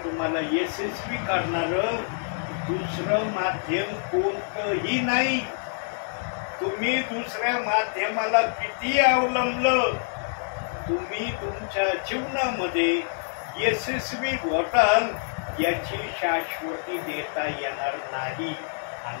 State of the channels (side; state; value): right; silent; digital silence